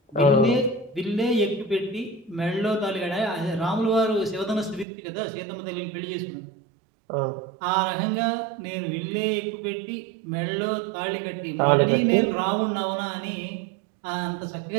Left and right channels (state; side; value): drops out; left; at 4.9 s